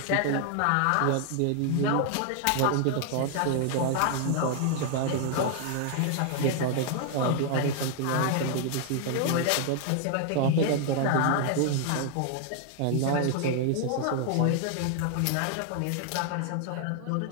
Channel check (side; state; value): both; different; correlation 0.00